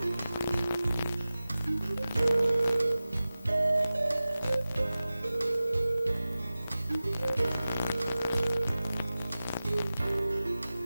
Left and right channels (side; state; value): both; inverted; correlation -0.96